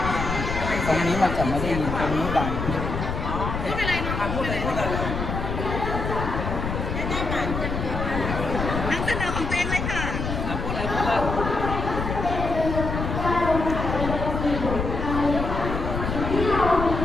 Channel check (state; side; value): noise; left; rumble, 3 dB below the sound